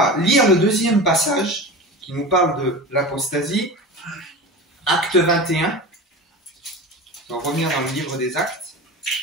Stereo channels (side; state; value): both; normal; correlation 0.31